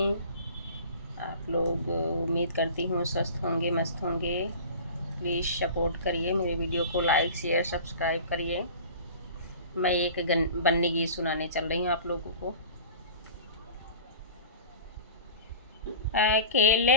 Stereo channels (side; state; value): both; inverted; correlation -0.39